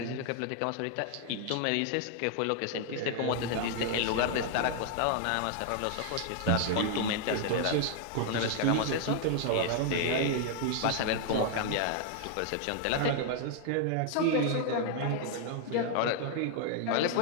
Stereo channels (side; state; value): both; different; correlation 0.00